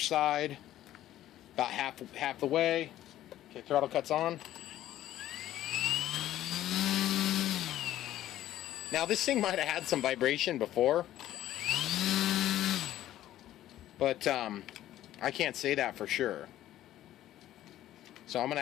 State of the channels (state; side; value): quieter; right; 13.3 dB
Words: About half the way. Okay, throttle cuts on. Now this thing might have had some vibration before, but I can't say that for sure. So I'm going to